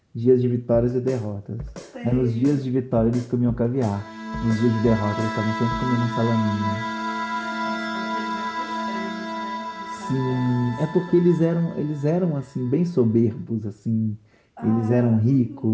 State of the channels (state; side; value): identical; both; correlation 1.00